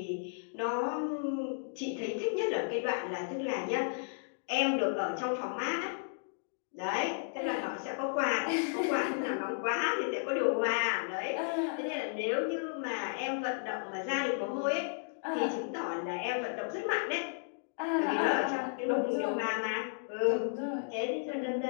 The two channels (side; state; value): right; silent; digital silence